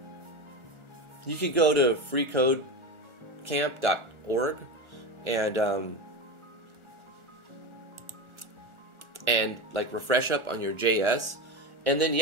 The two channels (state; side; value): late; left; 1.4 ms